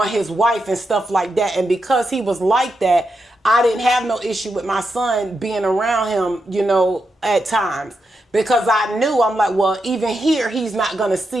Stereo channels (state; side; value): normal; both; correlation 0.85